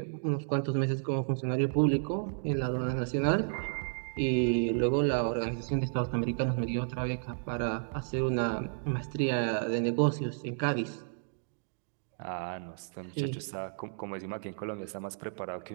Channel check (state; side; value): silent; left; digital silence